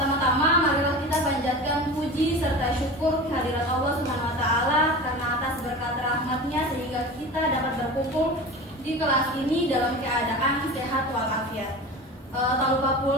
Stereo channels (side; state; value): both; normal; correlation 0.32